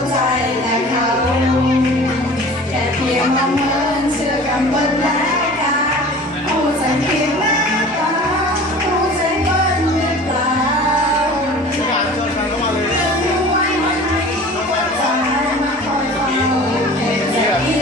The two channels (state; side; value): normal; both; correlation 0.42